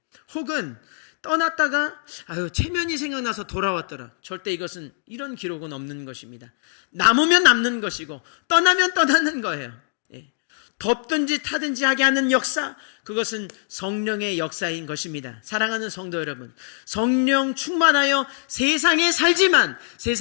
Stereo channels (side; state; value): right; silent; digital silence